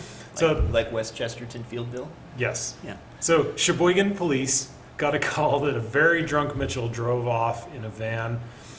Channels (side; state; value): both; identical; correlation 1.00